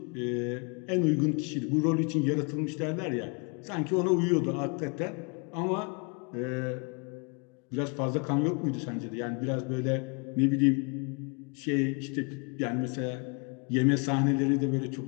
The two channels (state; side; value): quieter; right; 34.2 dB